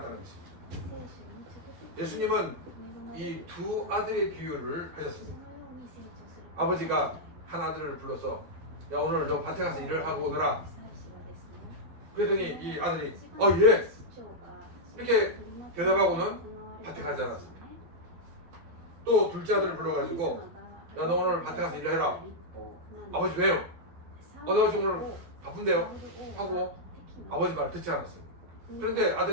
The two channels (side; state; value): left; late; 12 ms